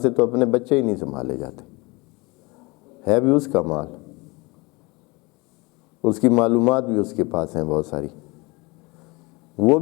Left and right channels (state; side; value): quieter; right; 25.6 dB